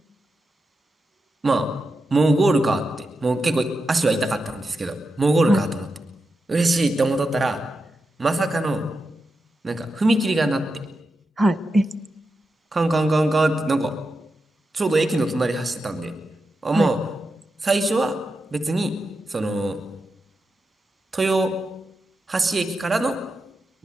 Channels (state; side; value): normal; both; correlation 0.88